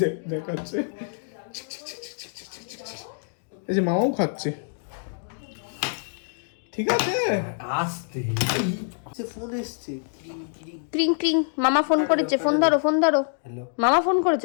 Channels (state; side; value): silent; right; digital silence